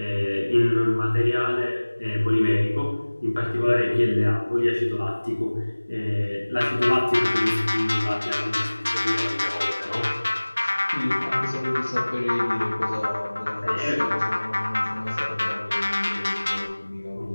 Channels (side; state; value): both; inverted; correlation -1.00